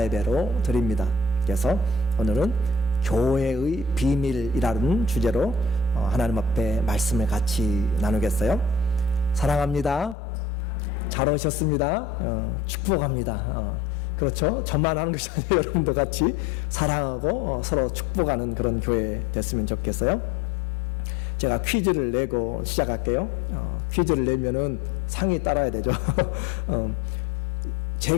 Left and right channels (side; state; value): right; drops out; at 10.2 s